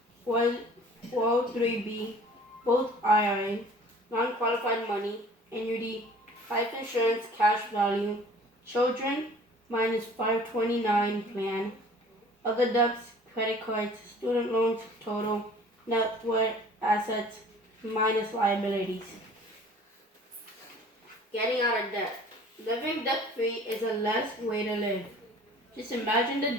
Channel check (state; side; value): normal; both; correlation 0.49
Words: 403b, both IRA, non-qualified money, annuity, life insurance, cash value, children, minus 529 plan, other debts, credit cards, student loans, total, net worth, assets, minus liabilities. Getting out of debt. Living debt-free is a less way to live. Just imagine the